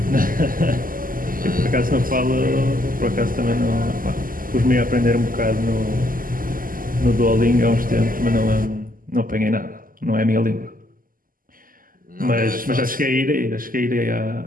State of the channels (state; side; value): late; left; 0.41 ms